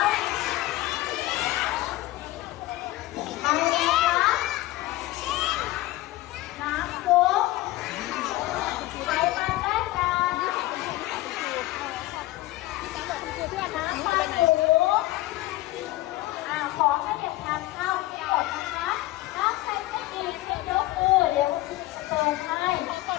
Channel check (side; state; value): right; quieter; 17.5 dB